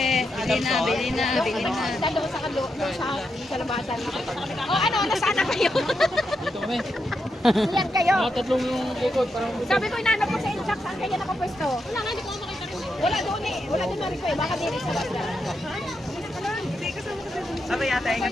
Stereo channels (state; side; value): normal; both; correlation 0.84